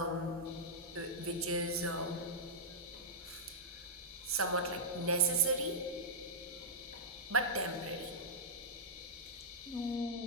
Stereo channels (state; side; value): normal; both; correlation -0.09